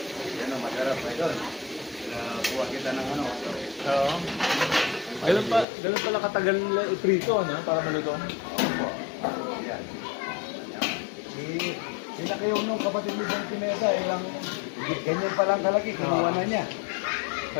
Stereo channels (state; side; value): drops out; right; at 5.7 s